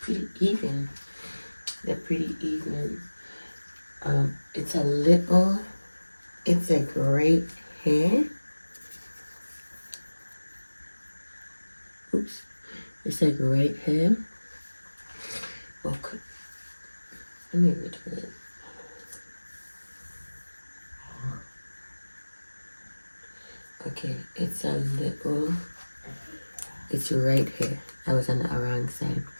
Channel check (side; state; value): both; inverted; correlation -1.00